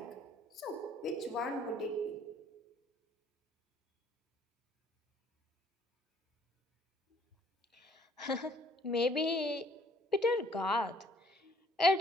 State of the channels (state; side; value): normal; both; correlation 0.60